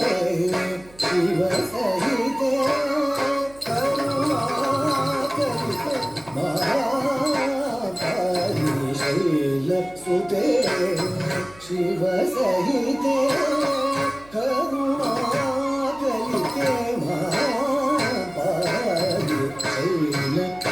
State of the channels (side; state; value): right; noise; hum, 24 dB below the sound